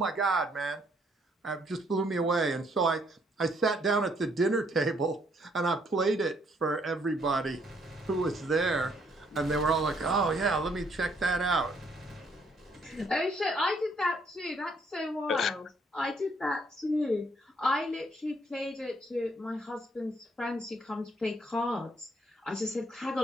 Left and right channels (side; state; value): both; normal; correlation 0.68